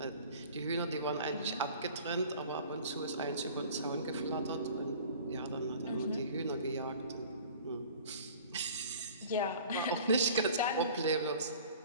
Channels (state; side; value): inverted; both; correlation -0.45